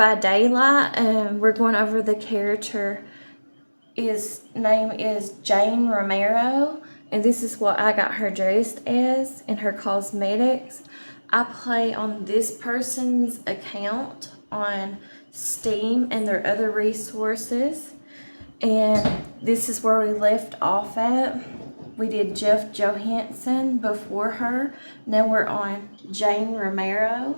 Daylight. We're going over the character. His name is Jane Romero, and this is what I got her dressed as in her cosmetics. I play on this person's account on Steam and their other resources, and this is where we left off at. We did Jeff Johansson before her. Now we're on Jane Romero.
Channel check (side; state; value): both; inverted; correlation -1.00